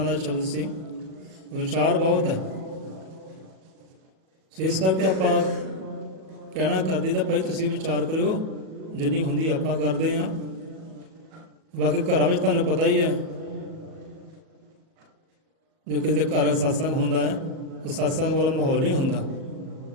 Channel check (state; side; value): late; left; 38 ms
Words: ਦਾ ਸ਼ਬਦ ਸੀ, ਵਿਚਾਰ ਬਹੁਤ ਹੈ। ਸੋ ਇਸ ਕਰਕੇ ਆਪਾਂ ਕਹਿਣਾ ਕਰਦੇ ਤਾਂ ਭਾਈ ਤੁਸੀਂ ਵਿਚਾਰ ਕਰਿਓ, ਜਿੰਨੀ ਹੁੰਦੀ ਆਪਾਂ ਕਰਦੇ ਹਾਂ। ਬਾਕੀ ਘਰਾਂ ਵਿੱਚ ਤੁਹਾਨੂੰ ਪਤਾ ਹੀ ਹੈ, ਜੋ ਕਿਸੇ ਦੇ ਘਰ ਸਤਸੰਗ ਹੁੰਦਾ ਹੈ ਉਹ ਸਤਸੰਗ ਵਾਲਾ ਮਾਹੌਲ ਨਹੀਂ ਹੁੰਦਾ,